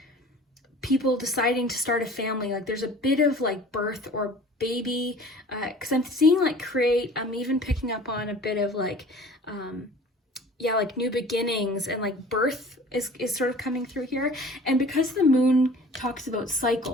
people deciding to start a family. Like there's a bit of like birth or baby, because I'm seeing like create. I'm even picking up on a bit of like, yeah, like new beginnings, and like birth is sort of coming through here. And because the moon talks about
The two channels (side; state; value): both; normal; correlation 0.46